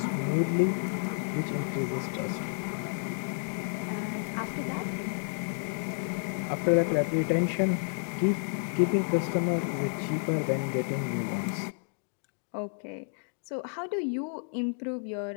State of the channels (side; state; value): right; silent; 57 dB below the other